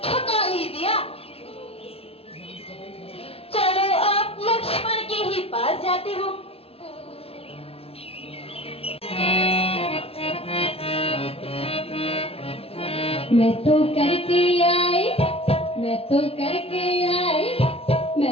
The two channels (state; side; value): late; right; 0.28 ms